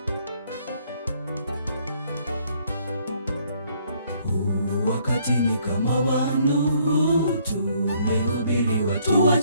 Wakati ni kama wa Nuhu, tumehubiri watu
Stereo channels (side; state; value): both; inverted; correlation -0.65